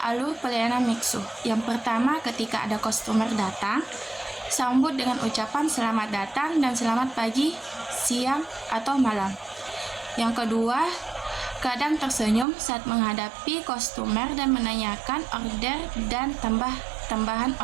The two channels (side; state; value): left; drops out; at 12.5 s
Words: pelayanan Mixu. Yang pertama, ketika ada customer datang, sambut dengan ucapan selamat datang dan selamat pagi, siang, atau malam. Yang kedua, kadang tersenyum saat menghadapi customer dan menanyakan order dan tambahan